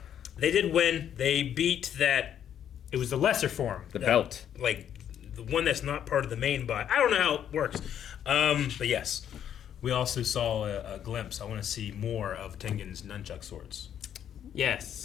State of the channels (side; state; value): right; quieter; 9.6 dB